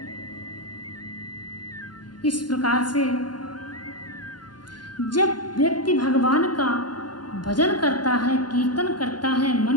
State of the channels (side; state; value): right; late; 0.70 ms